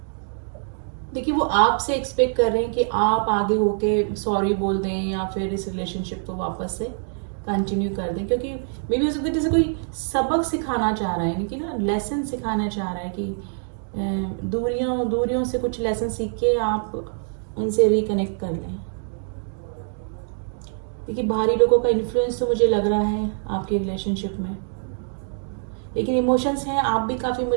देखिए वो आपसे एक्सपेक्ट कर रहे हैं कि आप आगे होके सॉरी बोल दें या फिर इस रिलेशनशिप को वापस से कंटिन्यू कर दें, क्योंकि मे भी हो सकता है जैसे कोई सबक सिखाना चाह रहा है, यानी कि ना लेसन सिखाना चाह रहा है कि दूरियों से कुछ लेसन सीख के आप उनसे रिकनेक्ट कर लें। देखिए बाहरी लोगों का इन्फ्लुएंस तो मुझे लग रहा है आपके रिलेशनशिप में, लेकिन इमोशंस हैं, आप भी काफ़ी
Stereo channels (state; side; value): silent; left; 62 dB below the other